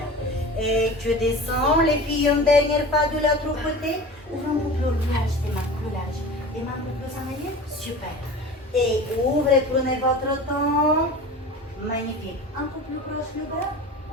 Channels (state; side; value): normal; both; correlation 0.36